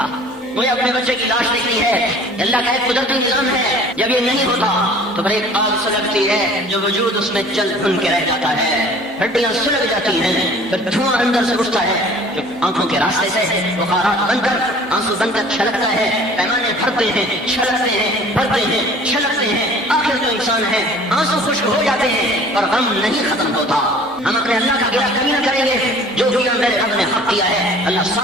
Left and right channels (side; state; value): both; normal; correlation 0.49